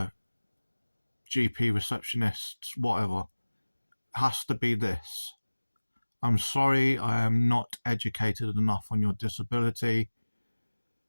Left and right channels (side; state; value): both; inverted; correlation -1.00